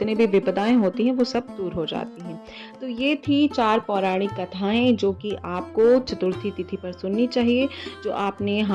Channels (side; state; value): both; identical; correlation 1.00